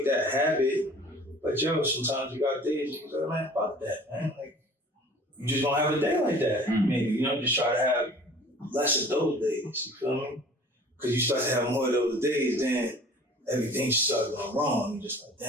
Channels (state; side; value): normal; both; correlation 0.47